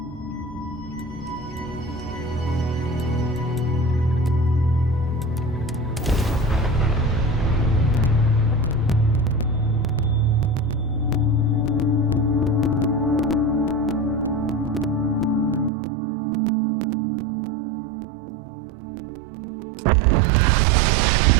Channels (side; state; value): left; drops out; at 15.7 s